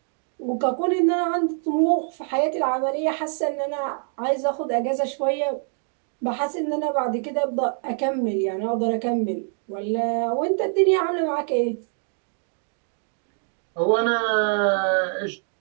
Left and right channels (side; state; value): left; silent; 56 dB below the other